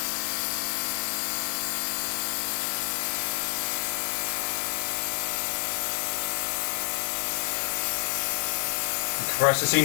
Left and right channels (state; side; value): silent; right; 59 dB below the other